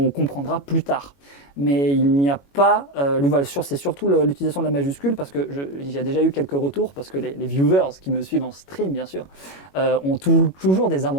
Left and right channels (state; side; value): late; right; 21 ms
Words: comprendra plus tard. Mais il n'y a pas, c'est surtout l'utilisation de la majuscule parce que il y a déjà eu quelques retours parce que les viewers qui me suivent en stream bien sûr ont toujours des